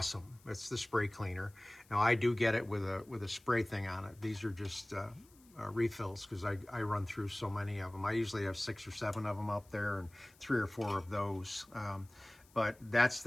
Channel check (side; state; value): left; noise; hiss, 28 dB below the sound